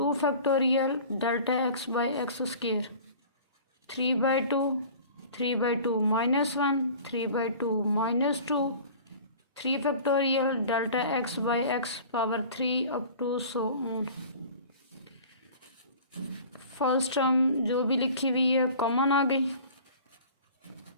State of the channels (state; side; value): inverted; both; correlation -0.44